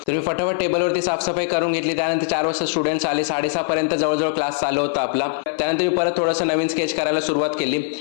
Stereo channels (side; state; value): right; silent; 58 dB below the other